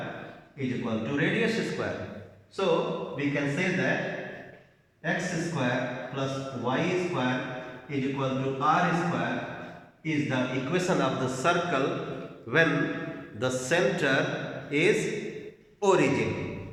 is equal to radius square. So we can say that x square plus y square is equal to r square is the equation of the circle when the center is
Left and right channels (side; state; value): both; identical; correlation 1.00